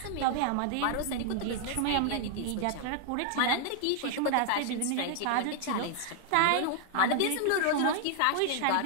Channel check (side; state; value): both; different; correlation 0.00